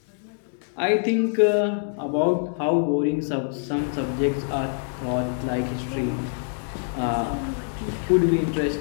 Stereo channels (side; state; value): right; silent; digital silence